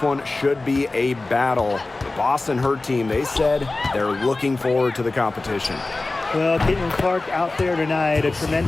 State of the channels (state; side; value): quieter; right; 3.2 dB